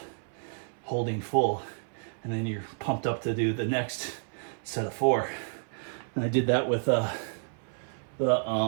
full, and then you're pumped up to do the next set of 4. And I did that with the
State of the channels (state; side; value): silent; left; 56 dB below the other